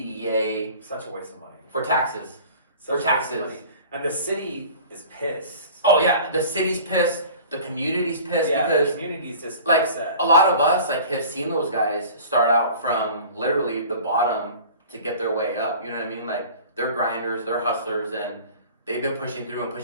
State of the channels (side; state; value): both; inverted; correlation -0.43